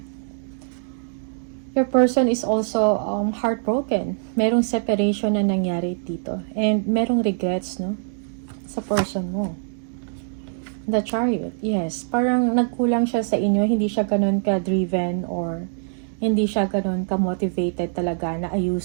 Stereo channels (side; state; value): left; silent; digital silence